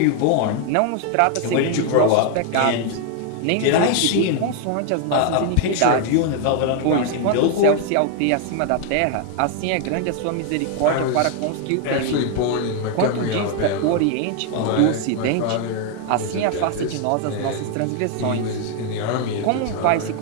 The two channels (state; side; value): different; both; correlation 0.00